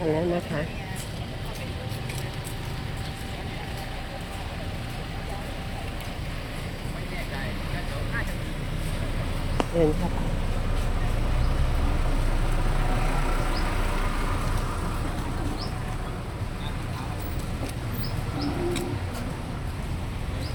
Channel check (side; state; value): both; identical; correlation 1.00